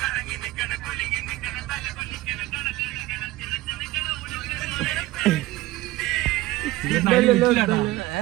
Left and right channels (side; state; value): left; quieter; 17.7 dB